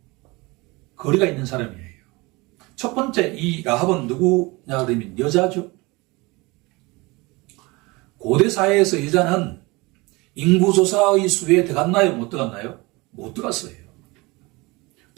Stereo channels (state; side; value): quieter; left; 24.2 dB